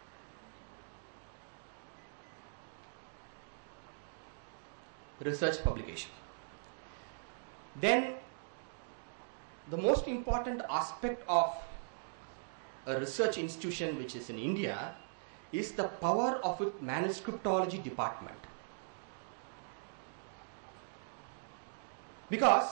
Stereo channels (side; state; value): left; silent; digital silence